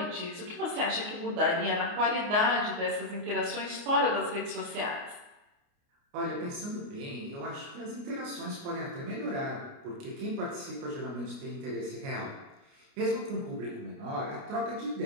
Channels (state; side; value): late; left; 29 ms